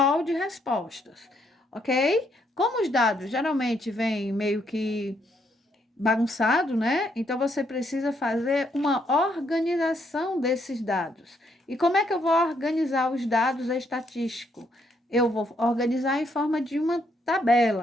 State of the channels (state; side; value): normal; both; correlation 0.73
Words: de respostas, ok? Como os dados geralmente vêm meio que bagunçado, né? Então você precisa fazer uma organização desses dados. E como é que eu vou organizar os dados estatísticos? Eu vou organizar em forma de uma